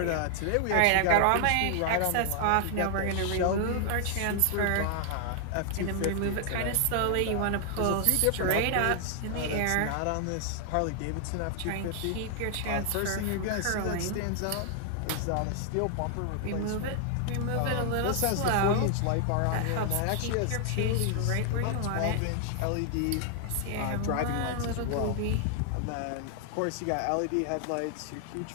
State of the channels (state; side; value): different; both; correlation 0.00